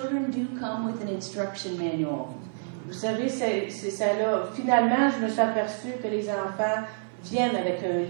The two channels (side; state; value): left; silent; 56 dB below the other